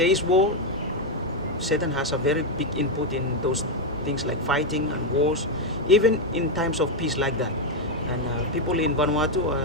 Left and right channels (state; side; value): normal; both; correlation 0.03